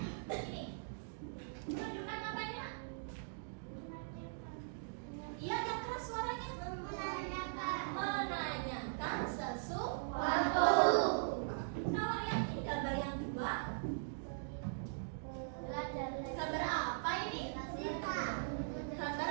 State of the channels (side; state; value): left; silent; digital silence